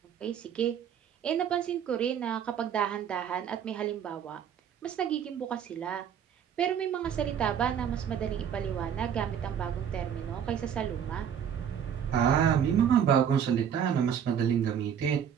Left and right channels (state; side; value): quieter; left; 8.5 dB